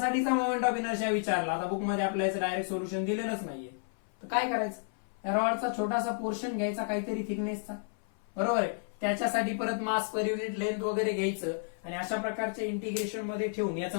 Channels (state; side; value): silent; right; 56 dB below the other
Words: मोमेंट ऑफ इनर्शिया विचारला, आता बुक मध्ये आपल्याला डायरेक्ट सोल्युशन दिलेलंच नाहीये, तर काय करायचं? या रॉडचा छोटासा पोर्शन घ्यायचा काहीतरी थिकनेसचा, बरोबर आहे. त्याच्यासाठी परत मास पर युनिट लेंथ वगैरे घ्यायचं आणि अशा प्रकारच्या इंटिग्रेशन मध्ये ठेवून